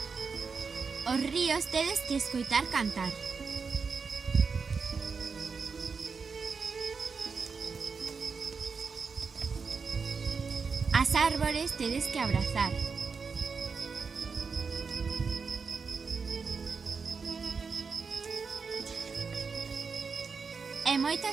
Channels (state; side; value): quieter; left; 5.2 dB